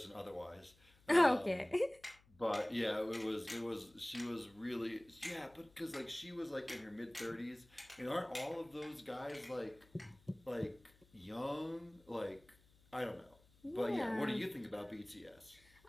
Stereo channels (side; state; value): left; noise; hum, 29 dB below the sound